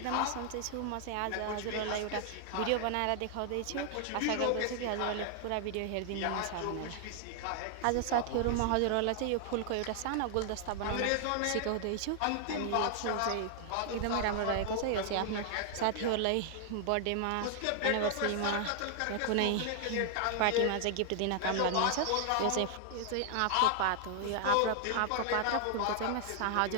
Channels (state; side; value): different; both; correlation 0.00